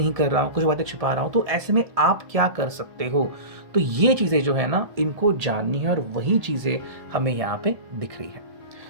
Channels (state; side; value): late; left; 1.7 ms